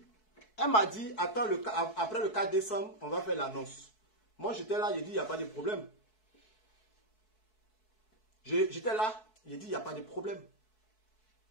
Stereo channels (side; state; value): right; late; 4.6 ms